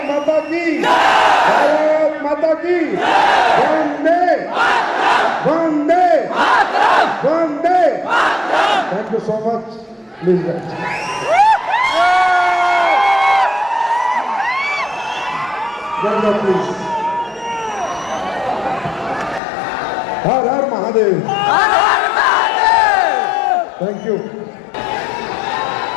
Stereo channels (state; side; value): drops out; right; at 19.4 s